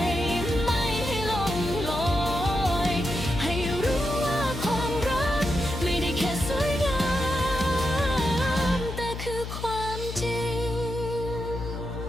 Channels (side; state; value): left; noise; hum, 7 dB below the sound